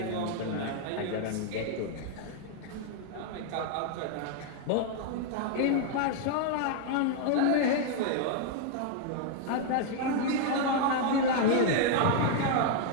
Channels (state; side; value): different; both; correlation 0.00